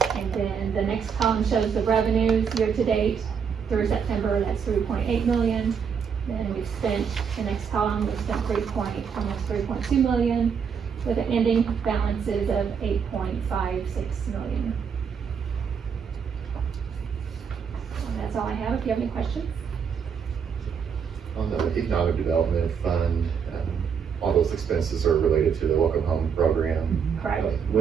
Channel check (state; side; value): quieter; left; 6.7 dB